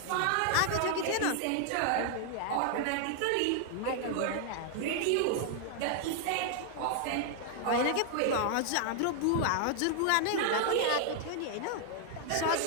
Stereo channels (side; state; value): both; different; correlation 0.00